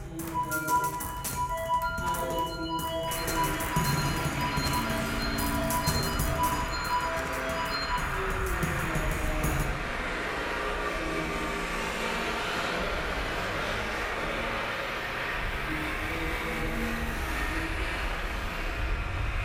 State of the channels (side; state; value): both; identical; correlation 1.00